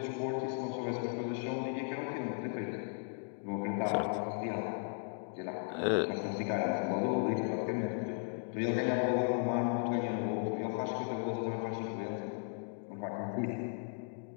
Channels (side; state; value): right; silent; 54 dB below the other